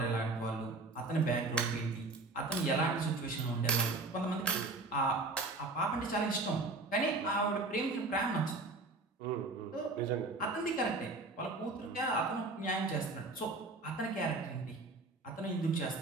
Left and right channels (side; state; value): left; quieter; 3.2 dB